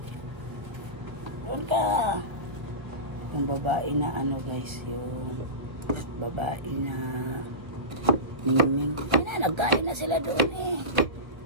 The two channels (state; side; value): late; left; 1.2 ms